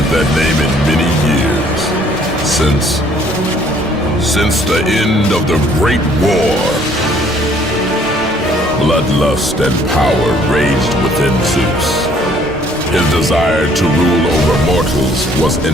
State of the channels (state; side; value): normal; both; correlation 0.61